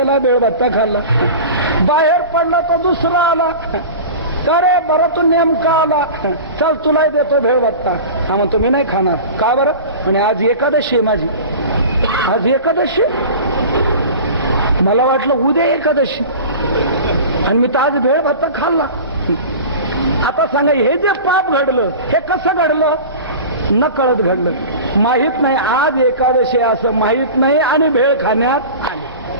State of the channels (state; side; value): inverted; both; correlation -0.35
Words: बेळबत्ता खाल्ला. बाहेर पडला तर दुसरा आला. अरे बरं तू नेमका आला, चल तुलाही देतो भेळबत्ता. हा म्हणतो मी नाही खाणार. का बरं? आणि आज एकादशी आहे माझी. आज एकादशी, मला वाटलं उद्या एकादशी, आणि मी तर आज भेळबत्ता खाल्ला. आता सांगा, हे जे पाप घडलं हे कसं घडलं? न कळत घडलं. माहित नाही आज एकादशी असं माहित नाही आणि भेळ खाण्यात आले.